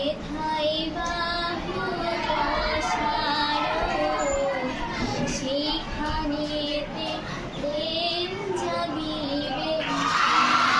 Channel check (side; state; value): both; identical; correlation 1.00